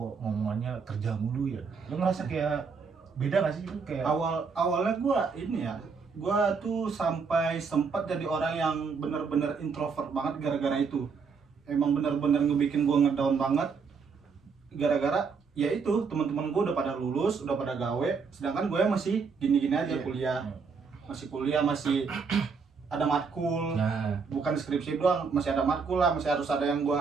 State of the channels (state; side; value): quieter; left; 5.3 dB